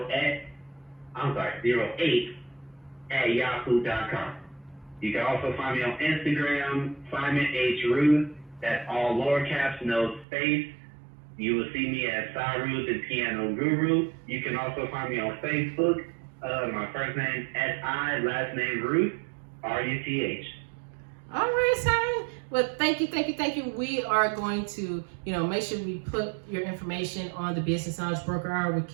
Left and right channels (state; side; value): drops out; left; at 10.2 s